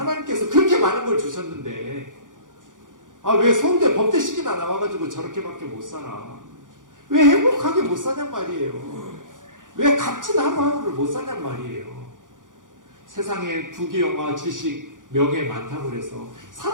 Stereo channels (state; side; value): late; left; 0.88 ms